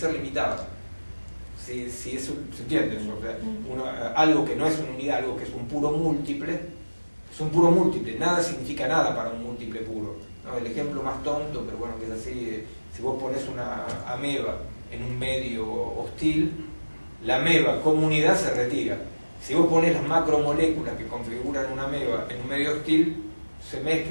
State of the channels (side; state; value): both; inverted; correlation -1.00